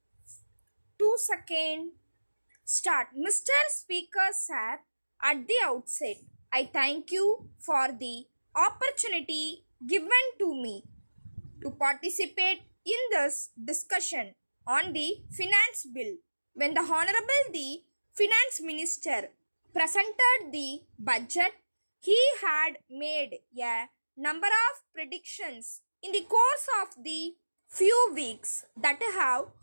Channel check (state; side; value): inverted; both; correlation -1.00